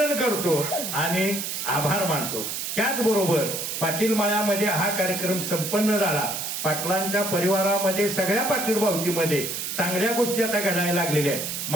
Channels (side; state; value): right; noise; hiss, 4 dB below the sound